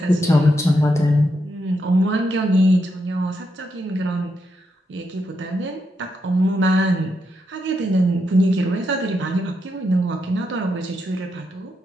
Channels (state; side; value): normal; both; correlation 0.82